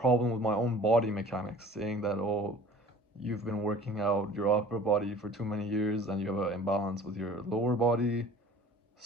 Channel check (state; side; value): normal; both; correlation 0.46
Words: with my own body mechanics, saying that, oh, you've been working out your upper body for too many years and you have an imbalance with your lower body.